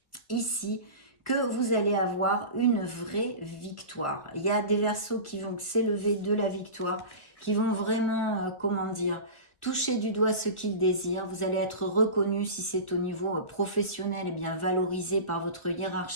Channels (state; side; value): late; right; 1.5 ms